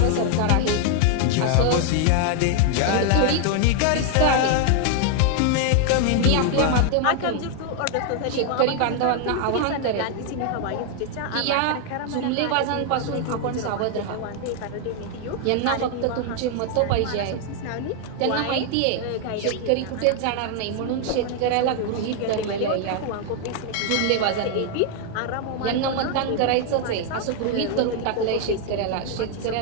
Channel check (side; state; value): both; different; correlation 0.00